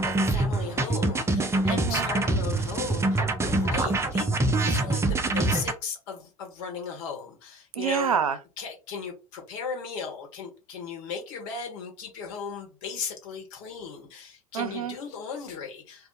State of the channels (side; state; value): both; normal; correlation 0.50